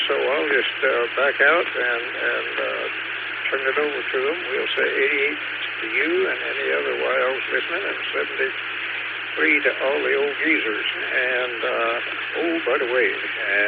so I'll just back out and turn it over to them. We'll say 88 to you and any other wiles listening, and 73 to all the old geezers. And, by the way,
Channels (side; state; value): both; identical; correlation 1.00